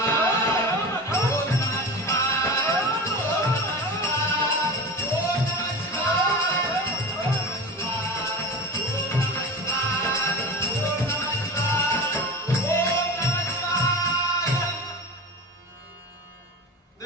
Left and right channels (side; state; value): both; normal; correlation 0.31